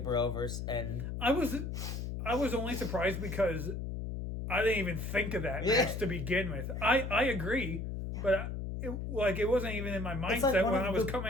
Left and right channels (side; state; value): left; noise; hum, 5 dB below the sound